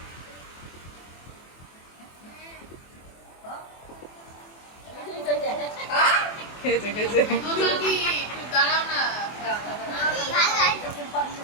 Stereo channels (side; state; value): right; late; 24 ms